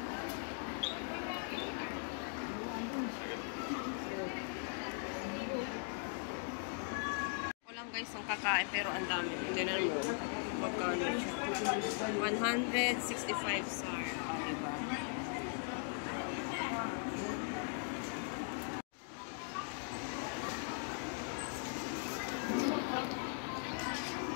Walang guys ang kakain pero ang dami. Tingnan mo. Magkano siya? 165 SAR. Diba?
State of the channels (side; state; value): right; silent; 51 dB below the other